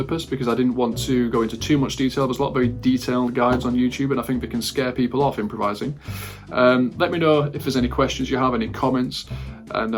because I didn't want to go into too much detail. There's a lot of very detailed guides on YouTube, and I think they can scare people off improvising. Let me know if there's any questions you have, any comments, and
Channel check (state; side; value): identical; both; correlation 1.00